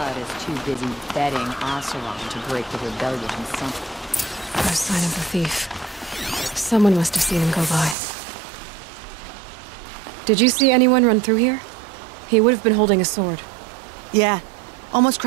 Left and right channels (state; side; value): drops out; left; at 8.0 s